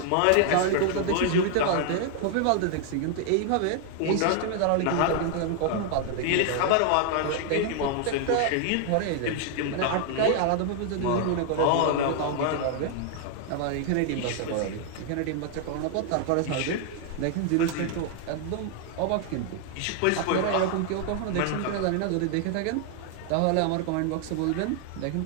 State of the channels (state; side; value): different; both; correlation 0.00